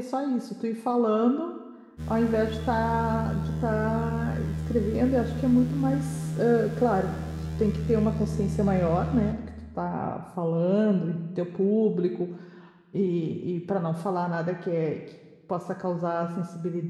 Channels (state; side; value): identical; both; correlation 1.00